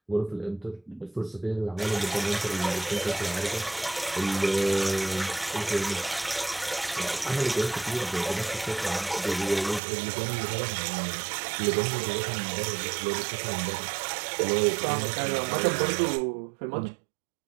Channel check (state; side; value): drops out; left; at 9.8 s